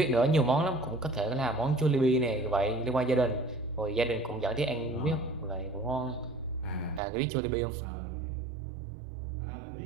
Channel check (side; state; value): left; drops out; at 7.0 s